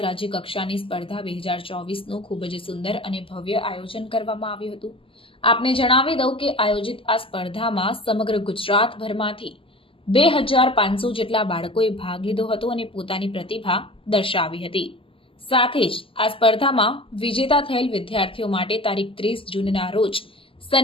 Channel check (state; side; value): late; right; 0.26 ms